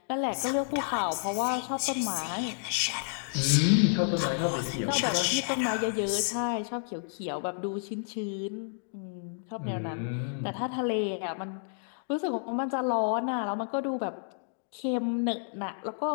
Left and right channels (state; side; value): silent; right; digital silence